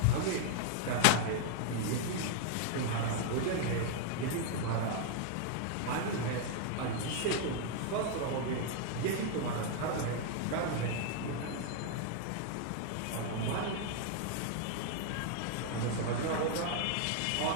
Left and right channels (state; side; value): different; both; correlation 0.00